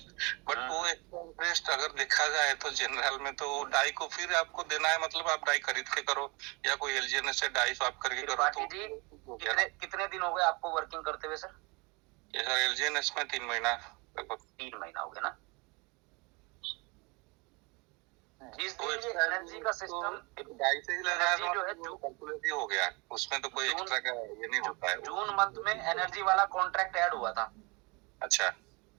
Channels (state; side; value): quieter; left; 28.4 dB